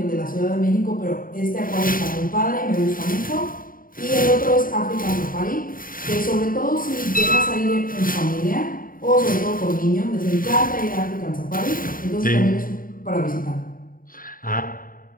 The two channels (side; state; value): right; late; 0.41 ms